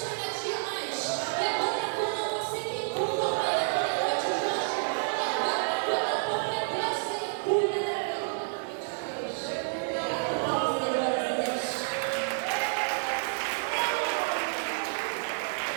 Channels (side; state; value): left; silent; 56 dB below the other